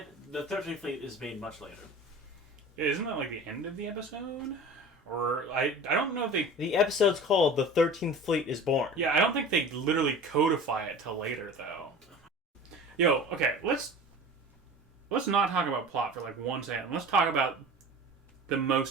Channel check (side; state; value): both; normal; correlation 0.38